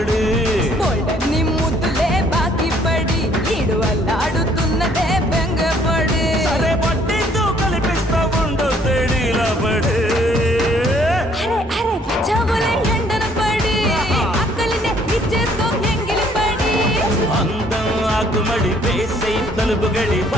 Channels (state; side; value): normal; both; correlation 0.62